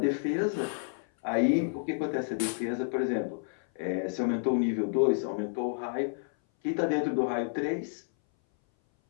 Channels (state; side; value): silent; right; 57 dB below the other